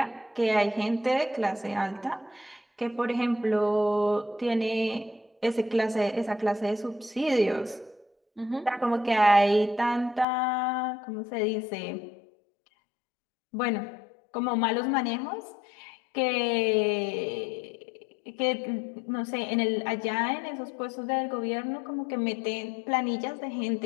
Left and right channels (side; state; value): right; drops out; at 10.2 s